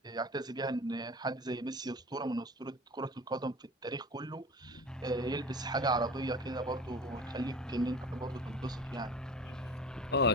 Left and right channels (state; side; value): normal; both; correlation 0.37